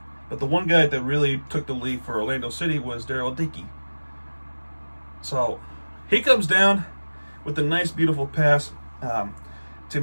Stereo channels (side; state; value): both; inverted; correlation -1.00